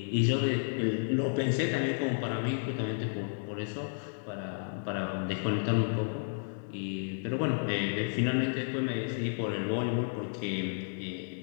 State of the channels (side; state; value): right; silent; digital silence